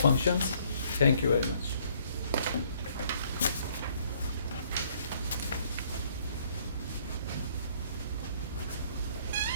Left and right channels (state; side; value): inverted; both; correlation -0.63